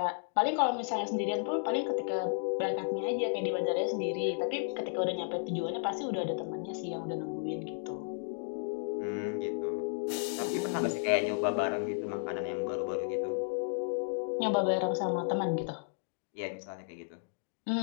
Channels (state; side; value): silent; right; digital silence